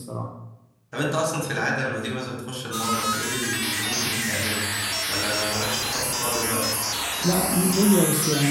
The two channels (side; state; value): both; identical; correlation 1.00